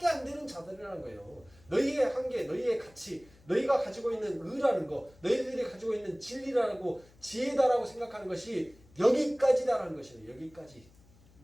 안 되는 자들이라는 거예요. 너희의 한계, 너희의 가치, 너희가 가지고 있는 의라는 거, 너희들이 가지고 있는 진리라고 지혜다라고 생각하는 것이 여기까지다라는 것이에요. 여기까지.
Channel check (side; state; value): left; noise; hum, 27 dB below the sound